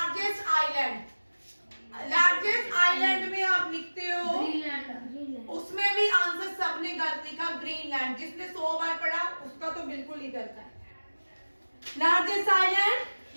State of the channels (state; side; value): inverted; both; correlation -1.00